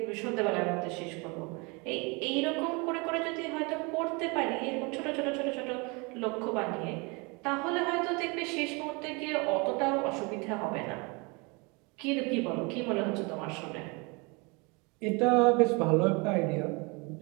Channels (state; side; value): quieter; left; 29.2 dB